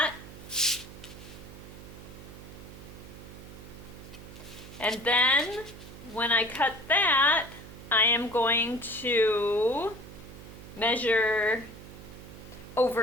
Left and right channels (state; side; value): noise; right; hum, 15 dB below the sound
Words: and then when I cut that, I am going to measure